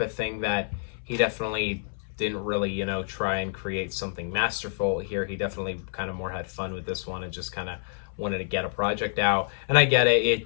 of thing that he definitely didn't really, try and create something masterful here. He definitely kind of more had fun with this one and just kind of wanted to get a project out. And I get it. It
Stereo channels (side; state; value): right; silent; 60 dB below the other